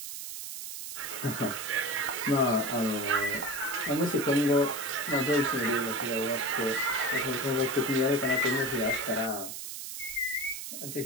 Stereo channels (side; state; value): right; noise; hiss, 8 dB below the sound